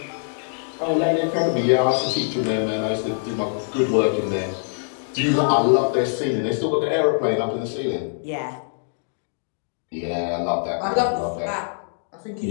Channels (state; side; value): silent; right; digital silence